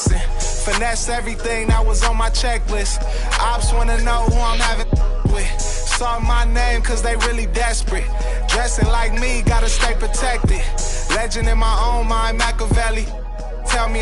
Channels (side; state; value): both; identical; correlation 1.00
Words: Finesse everything that was on my checklist. Ops wanna know who I'm having with. Saw my name cause they really desperate. Dressing like me, gotta stay protected. Legend in my own mind, Machiavelli. Tell me